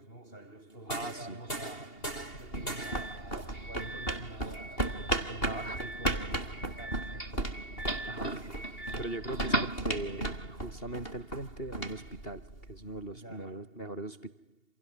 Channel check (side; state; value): right; late; 2.8 ms